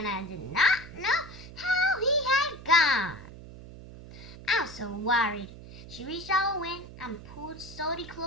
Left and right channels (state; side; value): noise; right; hum, 15 dB below the sound